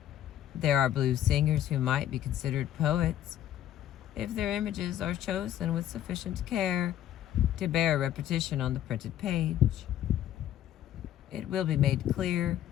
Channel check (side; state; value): right; quieter; 11.7 dB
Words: There are blues singers who might be considered poets if their images are chosen with sufficient care to bear repetition on the printed page. It will be made clear